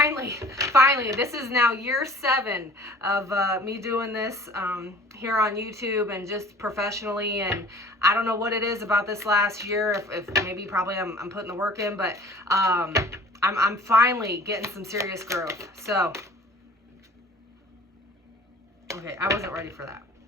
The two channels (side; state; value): both; normal; correlation 0.47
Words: this is now year 7 of me doing this here on YouTube and just professionally. And I don't know what it is about this last year, if maybe probably I'm putting the work in, but I'm finally getting some serious growth. So, okay, I wasn't ready for that.